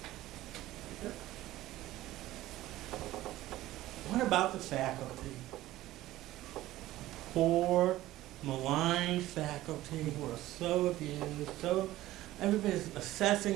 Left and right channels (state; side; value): quieter; left; 15.8 dB